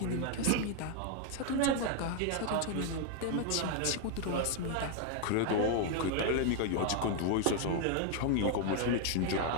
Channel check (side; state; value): both; different; correlation 0.00